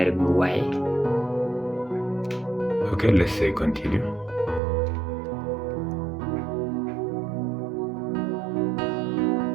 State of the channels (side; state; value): left; drops out; at 4.6 s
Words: bit why. Okay, let's say continue.